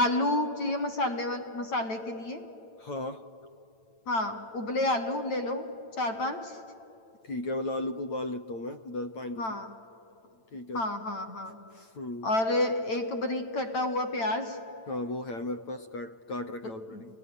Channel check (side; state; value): right; late; 9.0 ms